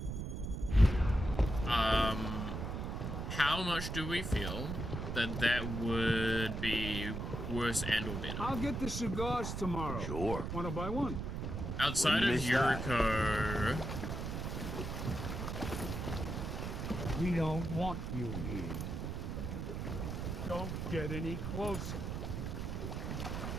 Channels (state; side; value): noise; right; rumble, 4 dB below the sound